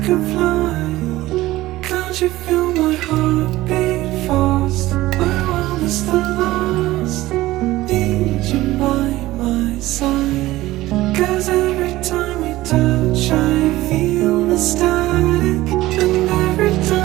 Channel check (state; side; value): quieter; left; 17.1 dB